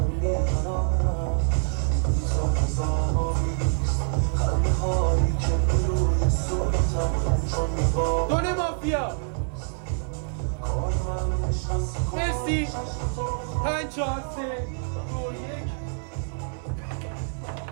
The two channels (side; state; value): left; silent; 61 dB below the other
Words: دونه مافیا مرسی 5 4 3 2 1